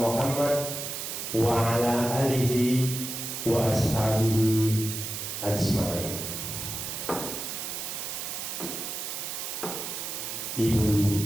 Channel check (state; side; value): noise; right; hiss, 5 dB below the sound